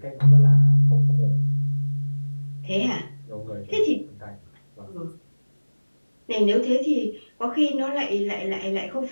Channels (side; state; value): both; inverted; correlation -1.00